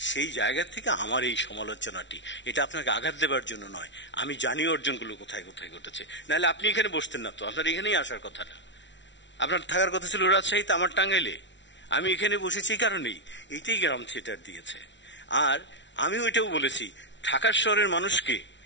সেই জায়গা থেকে আমার এই সমালোচনাটি, এটা আপনাকে আঘাত দেবার জন্য নয়। আমি জানি অর্জনগুলো কোথায় কোথায় ঘটেছে, নাহলে আপনি এখানে বসতেন না তো, আপনার এখানেই আসার কথা না। আপনার থাকার কথা ছিল রাজশাহীতে, আমার টাঙ্গাইলে। আমি এখানে বসেছি এই কারণেই, এইটাই গ্রাম থিয়েটার দিয়েছে। আর আমি ওইটাও বলেছি, ঢাকার শহরের মানুষকে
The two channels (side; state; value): right; late; 0.53 ms